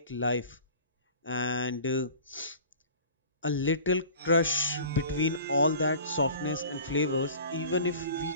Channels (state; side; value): inverted; both; correlation -0.43